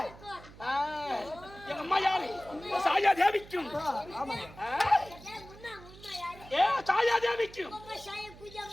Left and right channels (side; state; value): right; noise; hum, 19 dB below the sound